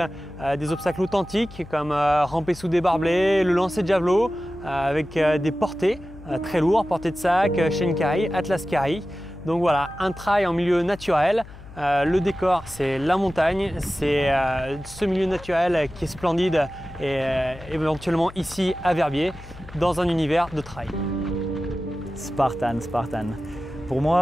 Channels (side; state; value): left; noise; hum, 17 dB below the sound